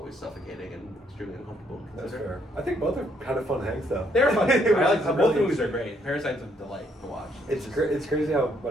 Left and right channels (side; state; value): both; normal; correlation 0.70